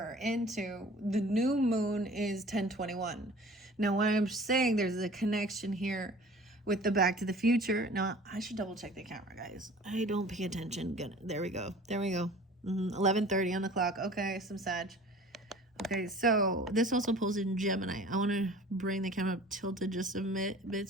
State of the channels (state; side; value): normal; both; correlation 0.45